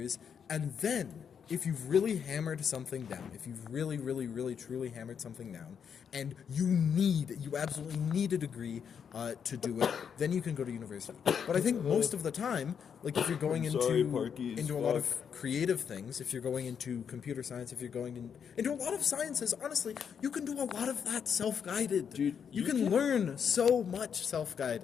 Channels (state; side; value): quieter; right; 7.4 dB